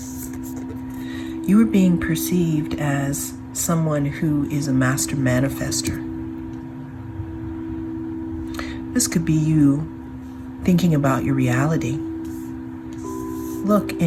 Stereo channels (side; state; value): both; identical; correlation 1.00